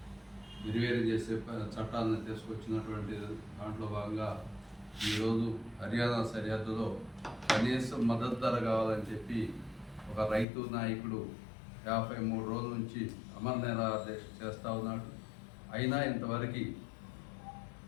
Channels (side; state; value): right; drops out; at 10.5 s